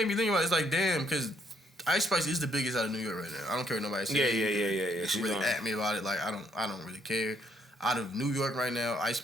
me think about it. It's like, damn, because Ice Spice is the biggest out of New York right now. I don't care what nobody says. Yeah. She really at me about it. Like, I don't really care. Out of New York right now, Ice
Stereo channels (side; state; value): both; normal; correlation 0.70